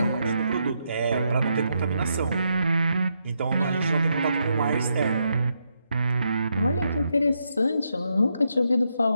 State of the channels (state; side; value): inverted; both; correlation -0.80